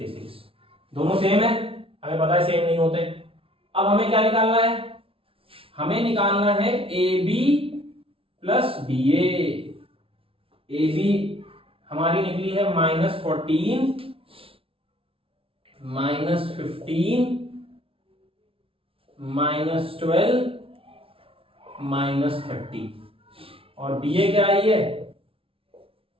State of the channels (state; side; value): late; left; 0.26 ms